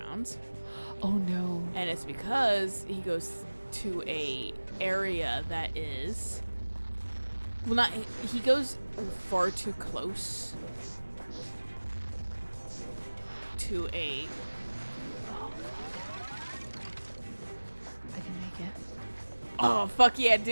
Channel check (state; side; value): inverted; both; correlation -1.00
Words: Oh no. And it's because he goes to a area that is, well, not, he goes far too close to a, I can make it. oh fuck yeah,